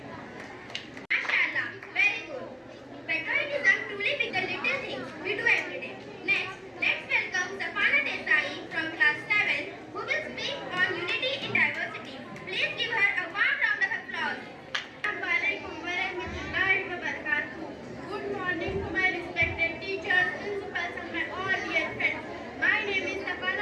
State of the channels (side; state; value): both; identical; correlation 1.00